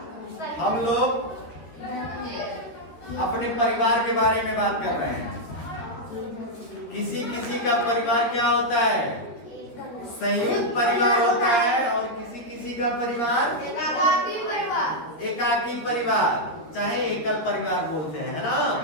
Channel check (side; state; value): right; late; 13 ms